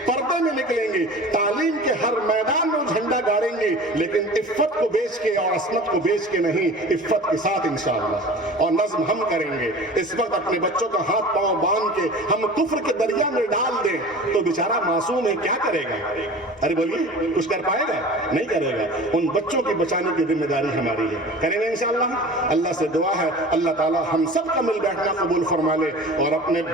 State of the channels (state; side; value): normal; both; correlation 0.39